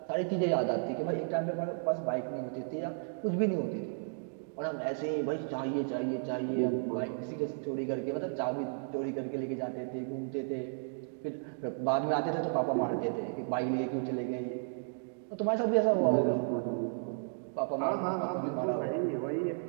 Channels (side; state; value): left; silent; digital silence